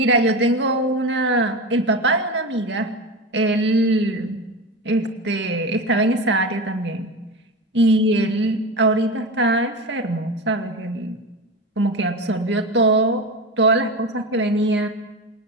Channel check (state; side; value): normal; both; correlation 0.23